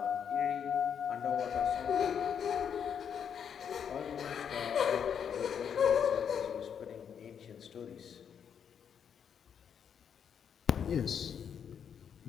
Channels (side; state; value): right; quieter; 7.8 dB